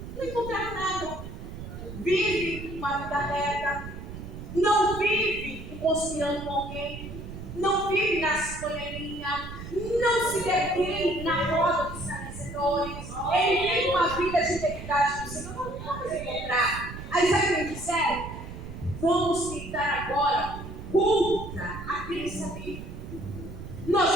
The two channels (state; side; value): noise; right; rumble, 10 dB below the sound